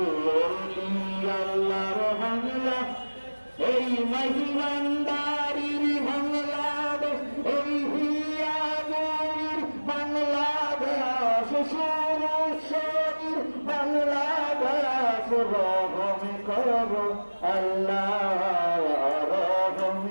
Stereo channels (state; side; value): inverted; both; correlation -1.00